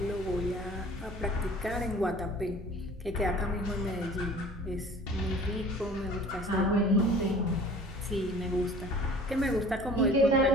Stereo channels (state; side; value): normal; both; correlation 0.47